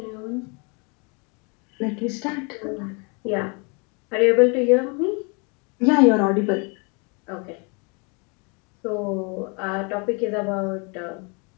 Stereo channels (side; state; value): right; quieter; 33.0 dB